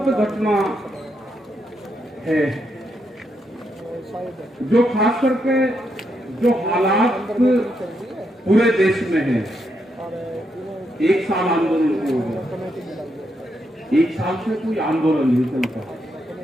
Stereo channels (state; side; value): normal; both; correlation 0.80